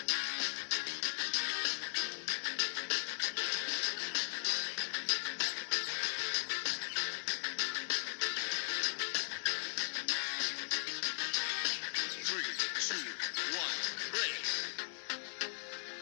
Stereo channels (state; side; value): silent; right; digital silence